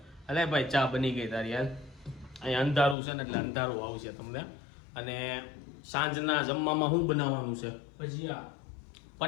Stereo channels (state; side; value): drops out; right; at 3.0 s